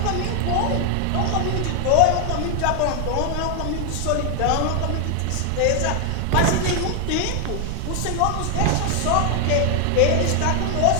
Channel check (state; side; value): different; both; correlation 0.00